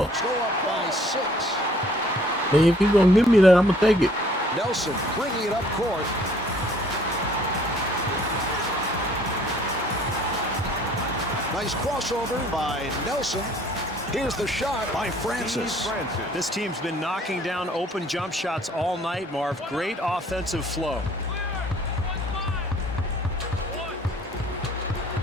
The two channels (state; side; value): normal; both; correlation 0.58